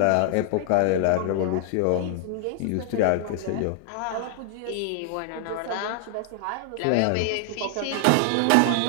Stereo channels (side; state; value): both; different; correlation 0.00